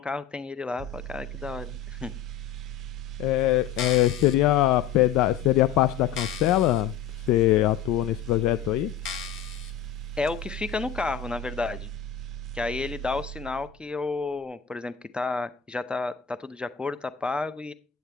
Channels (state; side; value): quieter; right; 8.7 dB